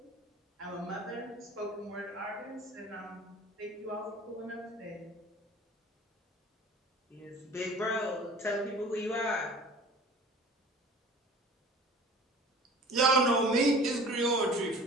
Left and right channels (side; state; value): both; normal; correlation 0.44